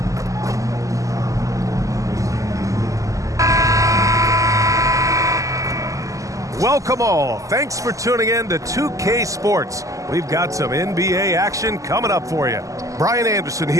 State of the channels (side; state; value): left; late; 0.16 ms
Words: Welcome all. Thanks for tuning in to 2K Sports. We've got some NBA action coming up for you. Brian Anderson